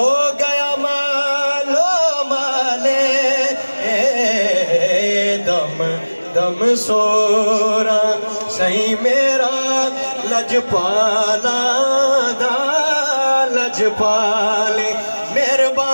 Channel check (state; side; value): inverted; both; correlation -1.00